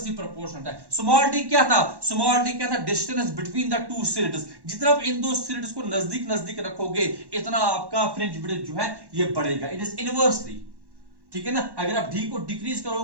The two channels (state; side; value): late; left; 1.1 ms